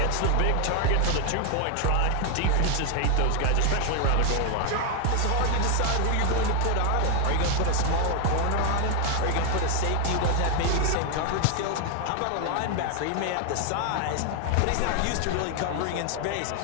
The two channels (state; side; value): different; both; correlation 0.01